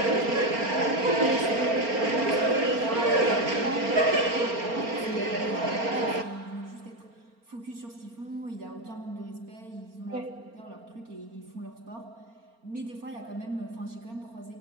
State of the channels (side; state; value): left; late; 4.3 ms